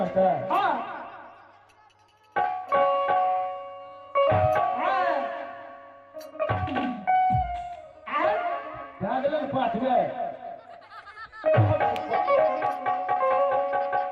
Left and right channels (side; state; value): both; identical; correlation 1.00